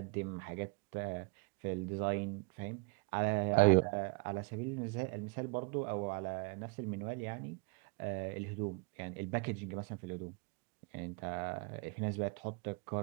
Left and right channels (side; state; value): left; quieter; 28.5 dB